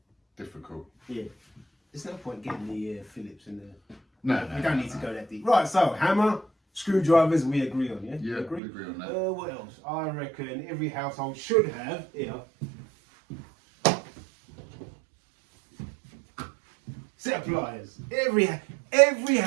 Difficult. Yeah. There's no point getting the Phillips and the... No. We don't need to go that deep. Right, so hammer, screwdrivers, we agree on, yeah? Yeah, we agree on that. What else? I reckon every household should have, here, set of pliers. Every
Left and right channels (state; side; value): drops out; left; at 8.6 s